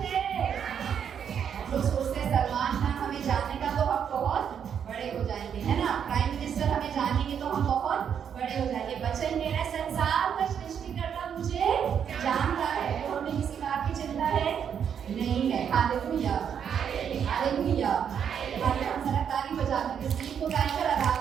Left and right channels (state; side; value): quieter; left; 8.0 dB